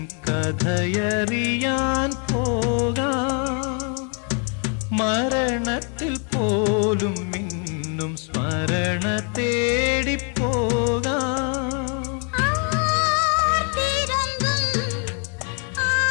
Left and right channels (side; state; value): right; quieter; 38.9 dB